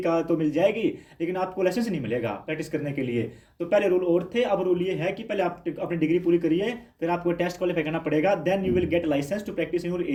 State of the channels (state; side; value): identical; both; correlation 1.00